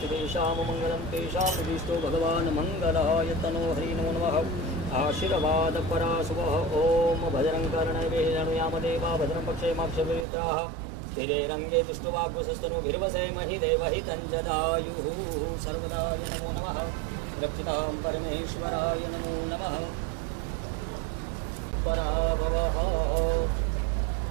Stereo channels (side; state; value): left; drops out; at 10.2 s